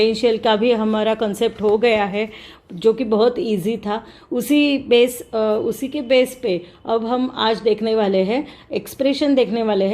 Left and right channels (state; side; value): identical; both; correlation 1.00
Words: का भी हमारा कंसेप्ट हो गया है जो कि बहुत इजी था। उसी के बेस पे अब हम आज देखने वाले हैं expression